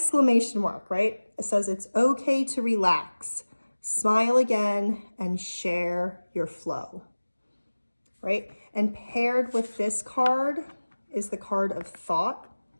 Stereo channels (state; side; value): inverted; both; correlation -1.00